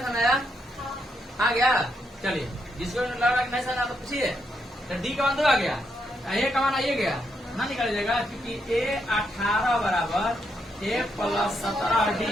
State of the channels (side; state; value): both; normal; correlation 0.79